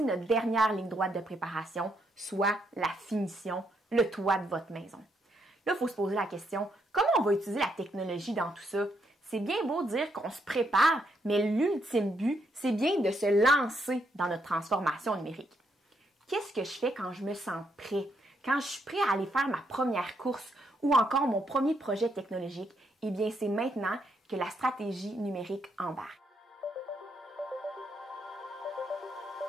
notre dernière ligne droite de préparation, soit la finition, le toit de votre maison. Là, il faut se poser la question, comment on va utiliser la technologie dans tout ça? C'est bien beau dire qu'on se prépare, mais l'ultime but, c'est bien de se lancer dans notre transformation numérique. Qu'est-ce que je fais quand je me sens prêt? Quand je suis prêt à aller faire ma première course ou encore mon premier projet technologique, eh bien, c'est maintenant que la stratégie numérique embarque.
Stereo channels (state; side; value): normal; both; correlation 0.76